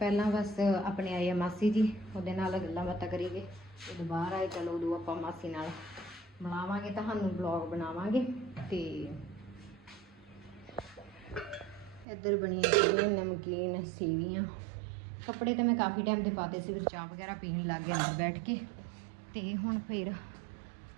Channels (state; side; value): drops out; left; at 12.1 s